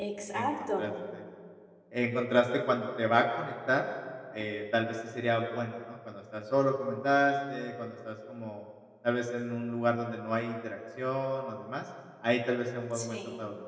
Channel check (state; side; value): identical; both; correlation 1.00